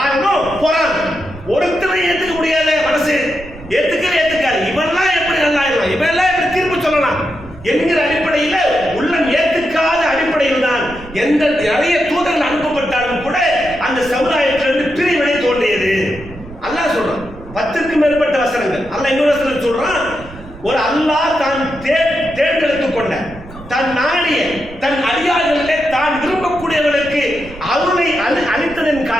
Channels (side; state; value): right; noise; rumble, 17 dB below the sound